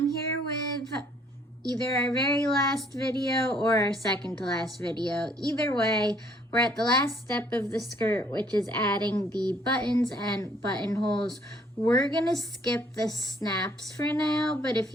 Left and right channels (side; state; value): both; normal; correlation 0.62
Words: here with either our very last video or our second to last video. Either way, we're at the last step of the skirt, which is adding the buttons and buttonholes. We're gonna skip the snaps for now, but if